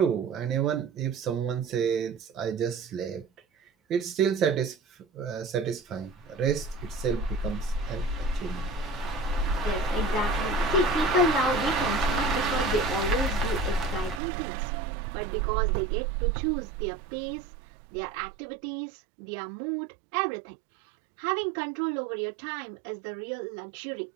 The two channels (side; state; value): left; drops out; at 14.2 s